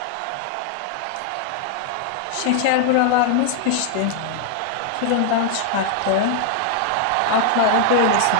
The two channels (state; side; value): different; both; correlation 0.00